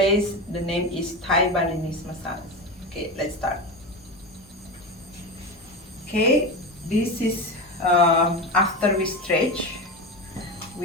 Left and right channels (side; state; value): both; normal; correlation 0.21